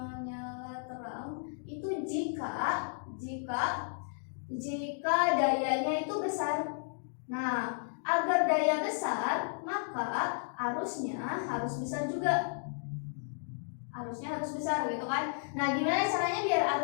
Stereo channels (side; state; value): right; silent; digital silence